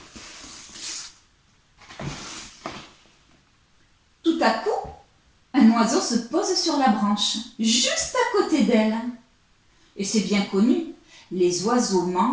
Tout à coup, un oiseau se pose sur la branche, juste à côté d'elle. Et c'est bien connu, les oiseaux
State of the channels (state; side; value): identical; both; correlation 1.00